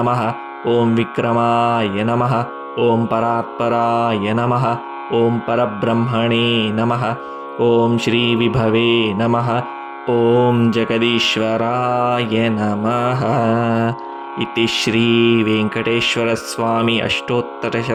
ఓం విక్రమాయ నమః. ॐ परात्पराय नमः। ॐ परब्रह्मणे नमः। ॐ श्रीविभवे नमः। ॐ जगदीश्वराय नमः। इति श्रीवेङ्कटेश्वरस्वामी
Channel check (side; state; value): both; identical; correlation 1.00